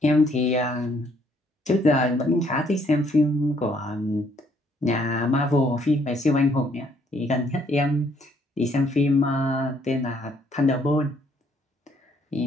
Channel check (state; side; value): normal; both; correlation 0.67